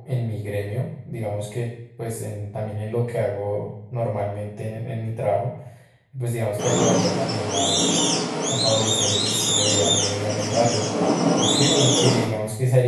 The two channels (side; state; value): both; identical; correlation 1.00